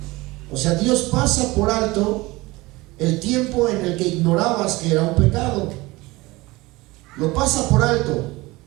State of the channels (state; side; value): quieter; left; 21.3 dB